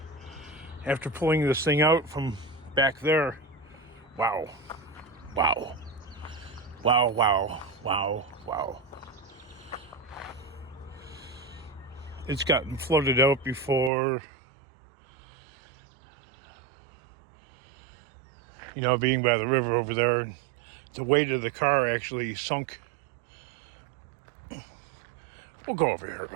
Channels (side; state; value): left; drops out; at 13.9 s